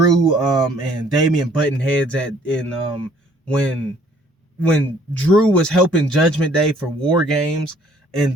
and Damian button heads when Drew was helping Judgment Day for War Games,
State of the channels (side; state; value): both; normal; correlation 0.60